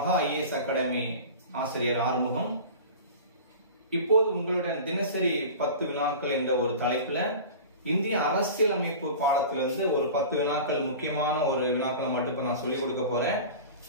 ஐஏஎஸ் அகாடமி ஆசிரியர் ஆறுமுகம். இப்போது உங்களுடன் தினசரி 10 வினாக்கள் என்ற ஒரு தலைப்புல இந்திய அரசியலமைப்பு பாடத்திலிருந்து ஒரு 10 வினாக்கள் முக்கியமான ஒரு வினாக்களை மட்டும் நான் சொல்லிக் கொடுக்க போறேன்.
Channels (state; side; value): inverted; both; correlation -0.36